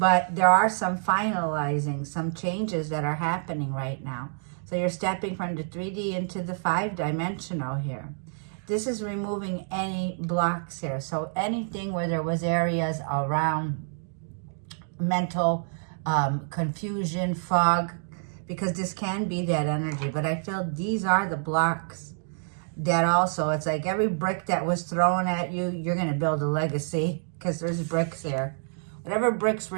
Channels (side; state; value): left; silent; digital silence